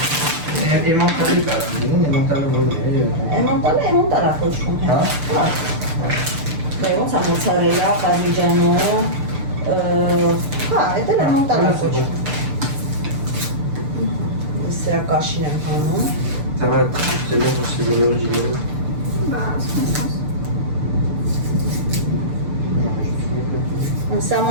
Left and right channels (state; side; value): late; left; 6.8 ms